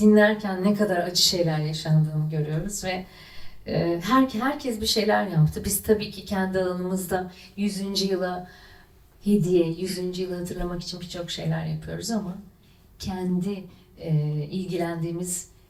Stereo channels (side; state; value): both; identical; correlation 1.00